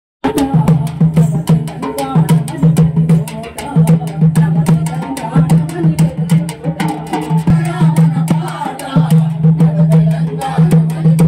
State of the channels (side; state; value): both; identical; correlation 1.00